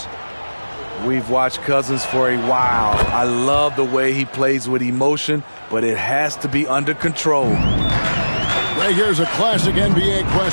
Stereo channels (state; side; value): inverted; both; correlation -1.00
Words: We've watched Cousins for a while. I love the way he plays with emotion, but it has to be under control. Right here's a classic NBA